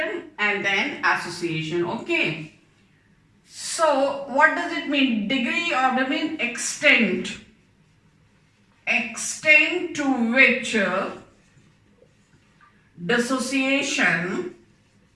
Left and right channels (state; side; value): identical; both; correlation 1.00